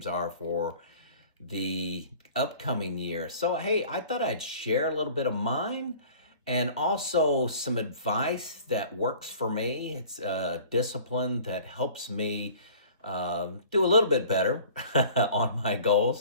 are for the upcoming year. So, hey, I thought I'd share a little bit of mine and also some advice that works for me. It's a discipline that helps me do a little bit better on my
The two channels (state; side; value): inverted; both; correlation -0.47